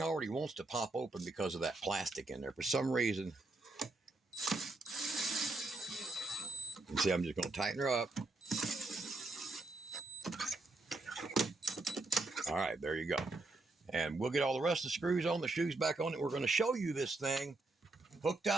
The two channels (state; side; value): quieter; left; 3.1 dB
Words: already wants to pop open because of that plastic in there. For some reason, you see, I'm just going to tighten her up. All right, there you go. And we'll get all the rest of the screws on, the shoes back on it. We're going to show you this thing hooked